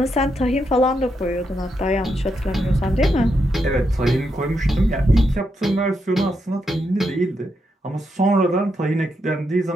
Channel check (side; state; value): both; normal; correlation 0.82